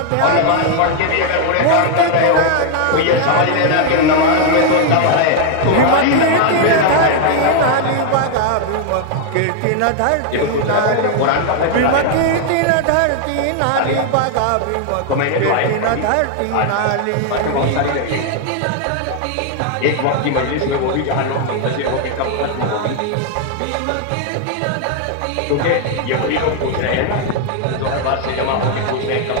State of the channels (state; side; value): different; both; correlation 0.00